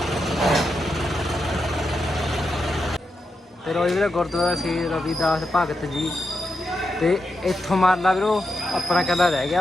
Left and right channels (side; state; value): both; normal; correlation 0.86